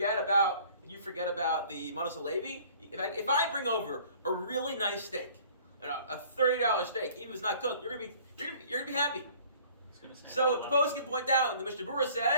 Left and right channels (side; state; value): both; inverted; correlation -0.52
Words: about the Manos Levi? If I bring over a really nice steak, a $30 steak, even if it's not cooked, you're gonna be happy." So the post can point out. The Mishnah Berurah